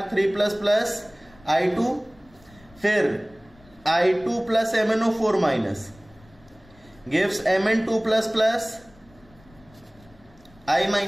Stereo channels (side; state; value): left; noise; rumble, 27 dB below the sound